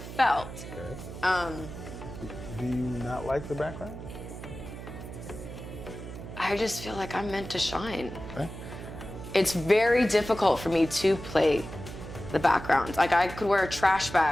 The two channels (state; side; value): noise; right; hum, 11 dB below the sound